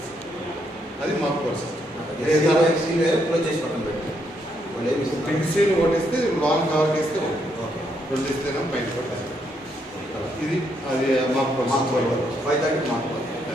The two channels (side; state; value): both; normal; correlation 0.76